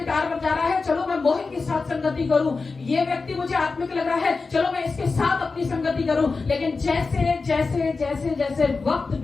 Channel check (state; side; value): quieter; right; 4.2 dB